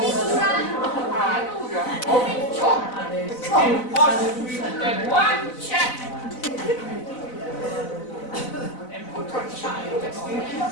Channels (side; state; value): right; late; 4.0 ms